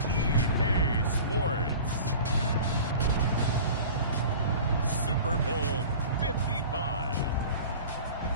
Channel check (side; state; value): both; inverted; correlation -0.40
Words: EA Sports, Super Bowl 55.